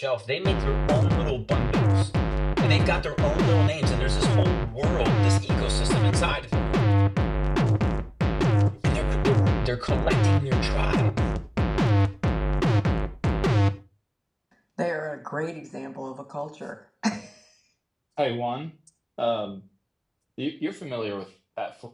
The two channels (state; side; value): identical; both; correlation 1.00